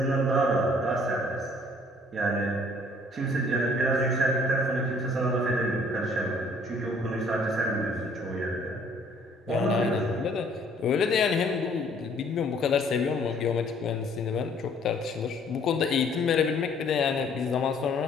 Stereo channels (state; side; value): normal; both; correlation 0.59